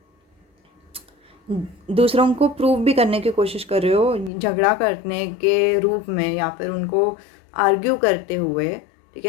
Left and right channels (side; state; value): right; drops out; at 4.3 s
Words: दूसरों को प्रूव भी करने की कोशिश कर रहे हो, झगड़ा करने के रूप में, या फिर उनको आर्ग्यू करते हुए, ठीक